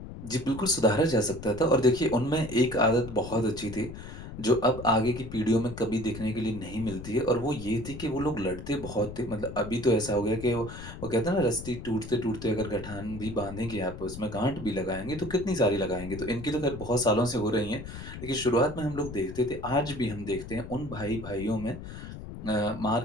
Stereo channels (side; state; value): left; noise; rumble, 11 dB below the sound